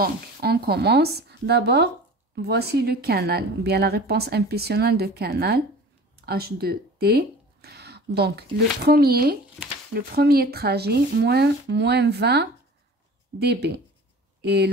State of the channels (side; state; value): both; normal; correlation 0.41